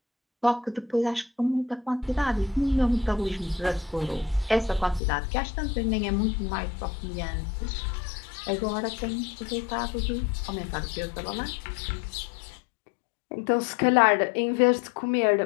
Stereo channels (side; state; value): right; drops out; at 5.0 s